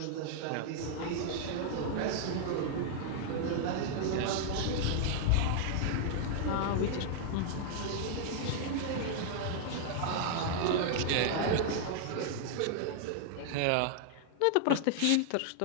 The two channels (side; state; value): both; different; correlation -0.01